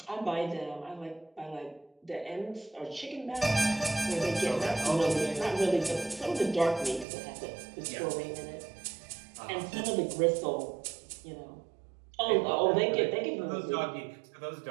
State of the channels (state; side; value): drops out; left; at 7.1 s